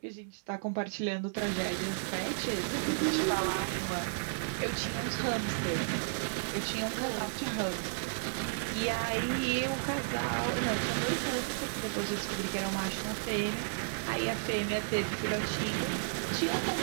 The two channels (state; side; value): silent; left; 56 dB below the other